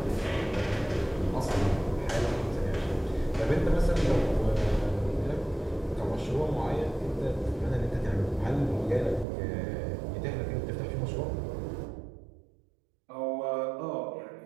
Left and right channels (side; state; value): left; drops out; at 9.2 s